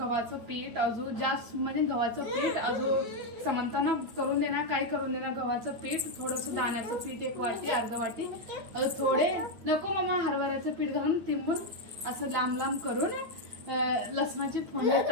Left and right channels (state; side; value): late; left; 8.7 ms